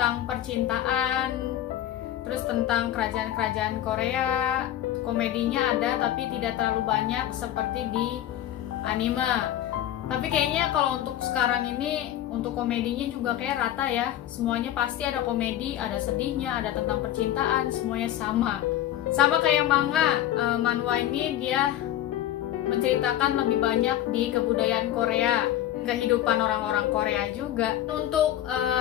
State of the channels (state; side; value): quieter; right; 12.4 dB